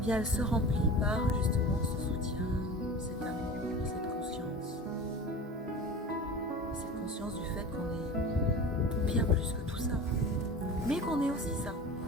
elle se remplit par justement ce soutien, cet amour, cette conscience. Cette conscience du fait qu'on est bien plus que tout ça, mais qu'on est aussi ça.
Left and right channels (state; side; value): normal; both; correlation 0.35